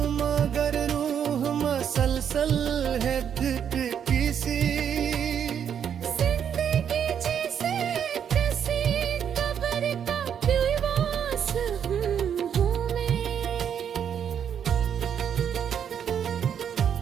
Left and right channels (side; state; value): left; quieter; 8.4 dB